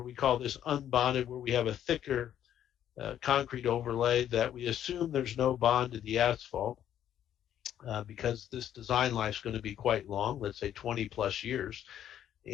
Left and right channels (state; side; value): quieter; right; 10.6 dB